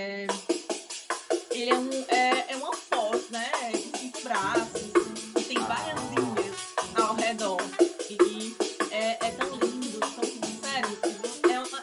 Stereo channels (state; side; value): identical; both; correlation 1.00